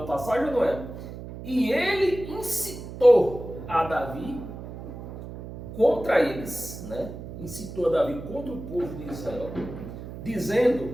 passagem, não é? E ele incitou a Davi contra eles, né? Incitou a Davi contra o povo de Israel,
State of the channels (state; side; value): noise; right; hum, 11 dB below the sound